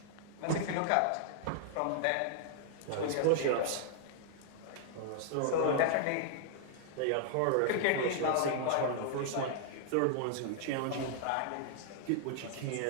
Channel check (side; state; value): both; different; correlation -0.01